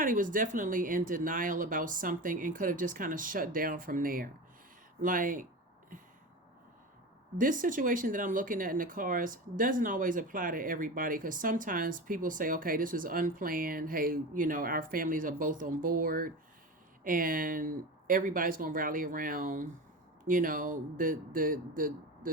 was definitely in denial about something and could have just kind of shut down from there. Like, this situation that I'm looking at in the cards doesn't always apply to everybody, because sometimes people say, okay, this was unplanned. Hey, our families are both on board and everybody's going to rally around, the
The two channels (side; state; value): both; normal; correlation 0.27